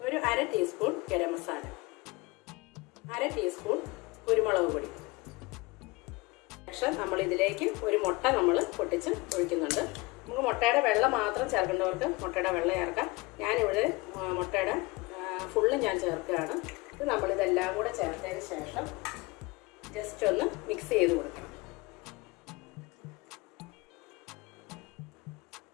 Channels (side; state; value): right; quieter; 23.6 dB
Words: ഒരു 1/2 ടീസ്പൂൺ ഗരം മസാല, 1/2 ടീസ്പൂൺ കുരുമുളക് പൊടി. ശേഷം നമ്മൾ ഇതിലേക്ക് ഒരു മുട്ട നമ്മൾ പൊട്ടിച്ച് ഒഴിക്കുന്നുണ്ട്. നമുക്ക് മുട്ടയുടെ വെള്ള മാത്രം ചേർക്കേണ്ടവർക്ക് മുട്ടയുടെ വെള്ള ചേർക്കാം. ഞാനിവിടെ മുട്ടയുടെ ഫുള്ള് ഞാൻ ചേർക്കുകയാണ്. ഇത് നമ്മളിതെല്ലാം കൂടെ ചേർത്തതിന് ശേഷം ജസ്റ്റ് ഒന്ന് മിക്സ് ചെയ്ത് കൊടുക്കണം.